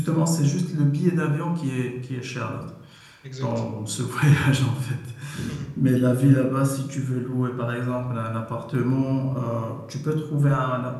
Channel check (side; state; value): both; identical; correlation 1.00